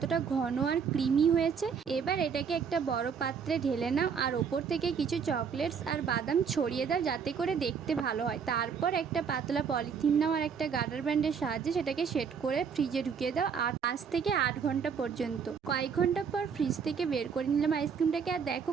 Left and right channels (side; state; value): left; quieter; 6.5 dB